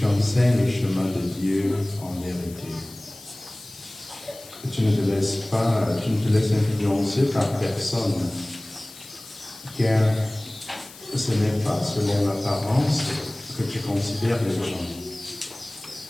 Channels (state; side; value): noise; left; hiss, 19 dB below the sound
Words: enseignes le chemin de Dieu en vérité. Et tu ne te laisses influencer par personne, car ce n'est pas selon l'apparence que tu considères les gens.